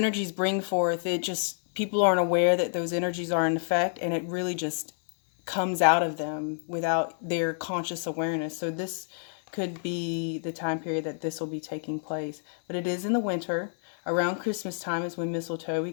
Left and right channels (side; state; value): right; silent; 59 dB below the other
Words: bring forth, it just, people aren't aware that those energies are in effect, and it really just comes out of them without their conscious awareness. So this could be the time period that this will be taking place. But it is in the winter. Around Christmas time is when mistletoe, we